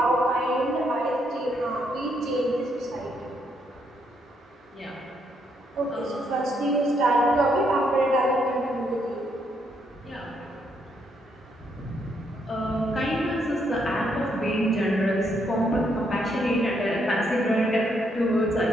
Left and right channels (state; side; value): normal; both; correlation 0.75